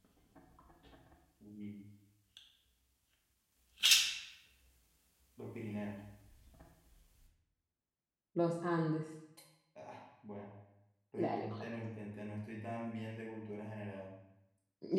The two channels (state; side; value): identical; both; correlation 1.00